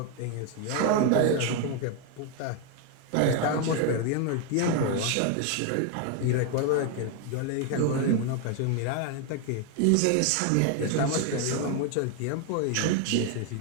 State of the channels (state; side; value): different; both; correlation 0.01